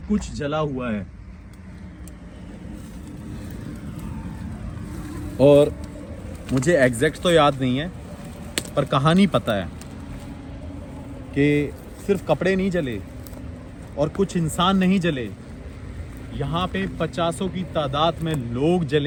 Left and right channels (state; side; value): identical; both; correlation 1.00